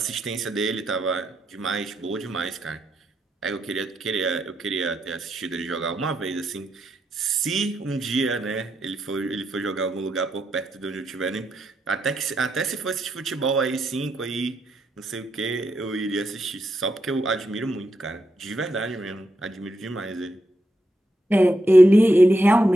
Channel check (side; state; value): both; normal; correlation 0.82